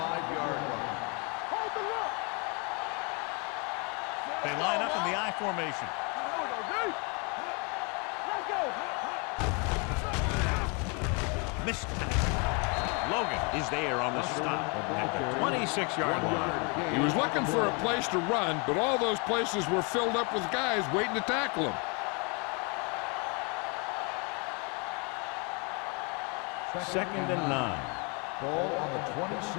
line. Hold the look. They line up in the I formation. Let's go, Missed pass. Logan is there on the stop at the 26-yard line. He was looking for a place to run, but all those places were filled up with guys waiting to tackle him. Second and 9. Ball on the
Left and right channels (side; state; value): right; quieter; 33.3 dB